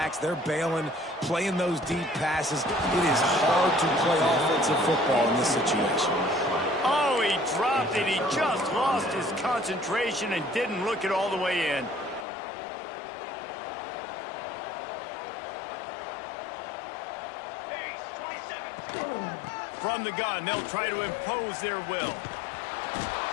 they're bailing, playing those deep passes. It is hard to play offensive football in this situation. Oh, he dropped it. He just lost his concentration and didn't look it all the way in. From the gun, they'll try to impose their will.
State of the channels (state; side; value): drops out; right; at 12.2 s